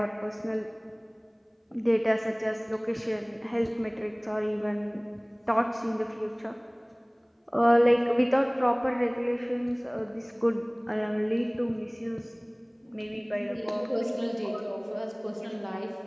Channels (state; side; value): identical; both; correlation 1.00